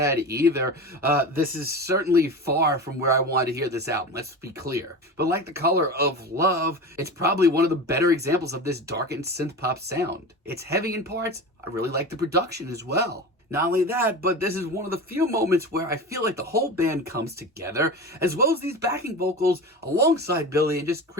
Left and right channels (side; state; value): both; normal; correlation 0.29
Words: either. This is certainly far from where I wanted to hear this album, let's be clear. But like The Color of Love, it's probably one of the better examples of this darkened synth pop sound. It's heavy in parts. I really like the production as well. Not only that, but this is one of the few moments where I feel like the whole band comes together, as well as these backing vocals alongside Billy, and just